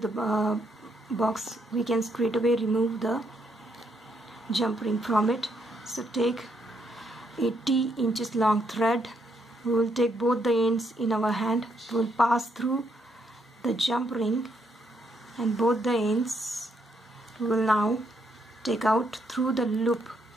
the box, we can straight away remove the jump ring from it. So take 80 inches long thread. We will take both the ends in our hand. We will pass through the jump ring, and both the ends we will now take out through the loop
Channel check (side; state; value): both; normal; correlation 0.75